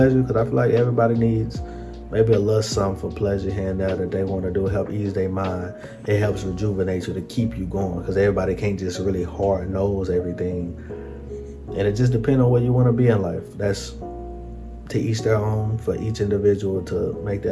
because I feel like everybody needs maybe a little something for pleasure here and there that they want to do, help ease their mind. It helps rejuvenate you to keep you going, because everybody can't just really hard nose everything. And it just depends on where you want to be in life. That's to each their own, for each individual to make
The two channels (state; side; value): identical; both; correlation 1.00